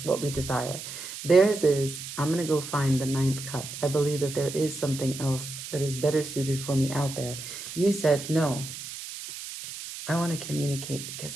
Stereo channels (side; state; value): right; noise; hiss, 10 dB below the sound